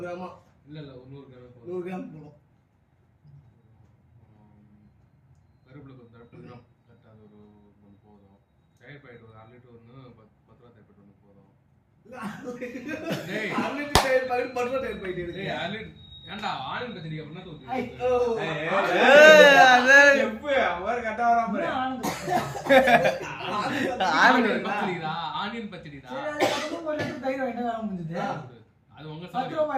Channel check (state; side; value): identical; both; correlation 1.00